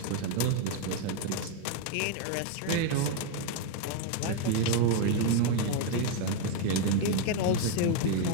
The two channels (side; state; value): both; different; correlation 0.01